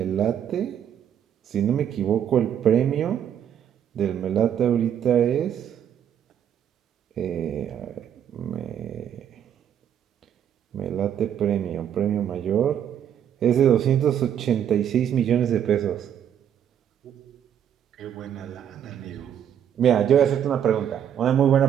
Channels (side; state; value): left; quieter; 9.4 dB